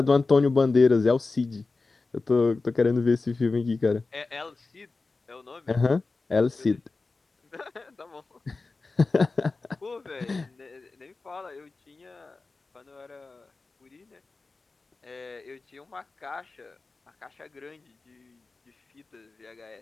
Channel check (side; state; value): right; quieter; 3.8 dB